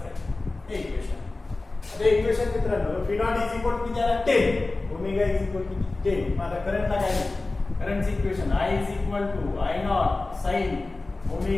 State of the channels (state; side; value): quieter; right; 3.3 dB